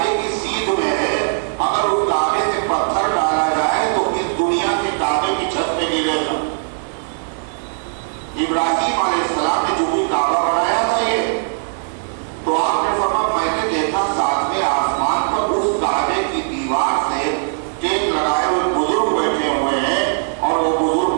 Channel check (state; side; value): silent; left; digital silence